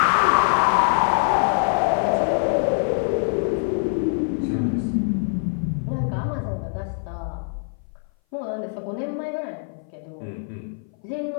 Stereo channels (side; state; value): right; silent; 58 dB below the other